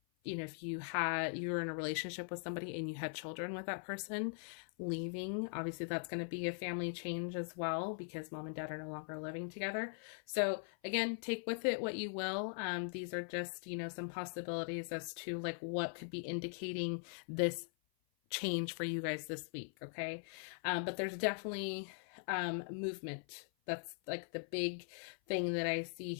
you know, if you were in a relationship with somebody and you had children with that person, leaving, obviously that's going to be a family change as well, because mom and dad are no longer living together. So again, take with it what you will. These are just, you know, some possibilities as to like what could be indicating this change for you guys this week. Okay. But there's definitely movement. That's like the big thing that I see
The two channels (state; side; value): silent; right; 50 dB below the other